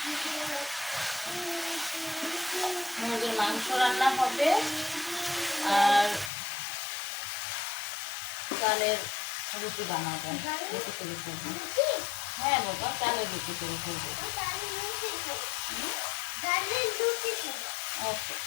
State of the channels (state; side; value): drops out; right; at 6.3 s